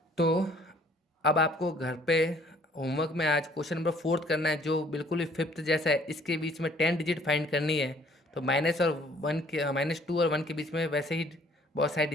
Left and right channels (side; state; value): both; normal; correlation 0.59